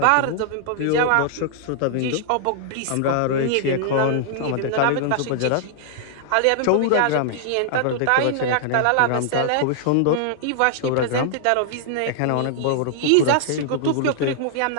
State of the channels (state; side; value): different; both; correlation -0.01